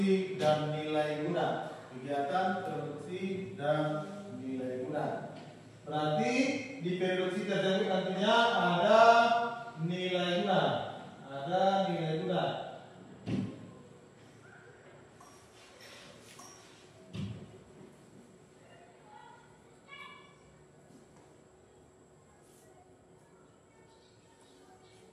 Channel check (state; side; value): identical; both; correlation 1.00